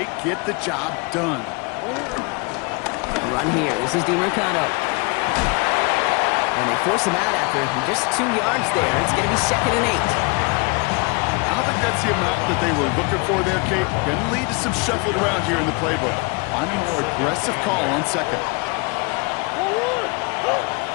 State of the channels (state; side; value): quieter; right; 29.7 dB